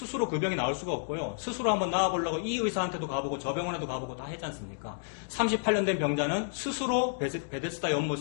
그 병이 나올 수가 없고요. 스스로 한번 나와보려고 이 의사한테도 가보고 저 병원에도 가보고 다 했지 않습니까? 38년 된 병자는 스스로 베데스다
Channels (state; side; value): silent; right; digital silence